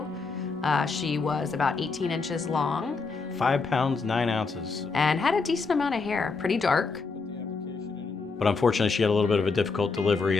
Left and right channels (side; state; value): right; quieter; 4.4 dB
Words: She was about 18 inches long. 5 pounds, 9 ounces. And had a decent amount of hair, pretty dark. But unfortunately, she had a little bit of a difficult delivery